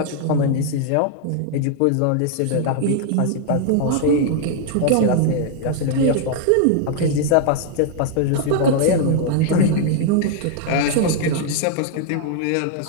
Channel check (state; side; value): different; both; correlation 0.00